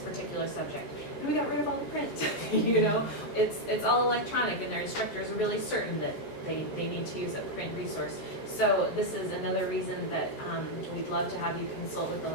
particular subject. And we got rid of all the print, It's all electronic, and their instructors are really certain that they need to use a print resource. So this is another reason that we'd love to have you consult with the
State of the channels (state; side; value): late; right; 14 ms